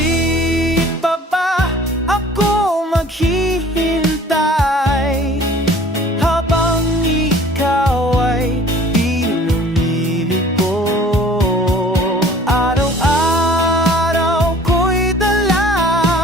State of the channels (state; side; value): normal; both; correlation 0.50